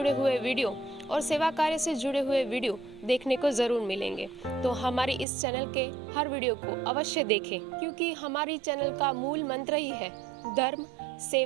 हुए वीडियो और सेवा कार्य से जुड़े हुए वीडियो देखने को ज़रूर मिलेंगे। तो हमारी इस चैनल के हर वीडियो को अवश्य देखें, क्योंकि हमारी चैनल का मूल मंत्र ही है धर्म,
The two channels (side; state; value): left; drops out; at 5.2 s